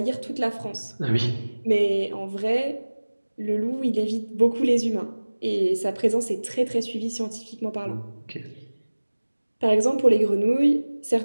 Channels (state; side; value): inverted; both; correlation -1.00